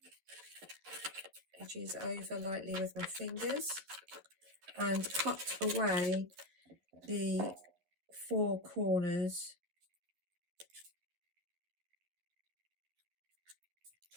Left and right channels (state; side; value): late; left; 11 ms